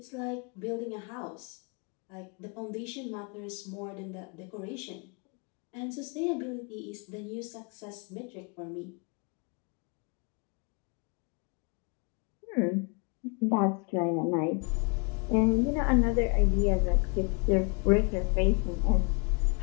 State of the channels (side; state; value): right; quieter; 34.5 dB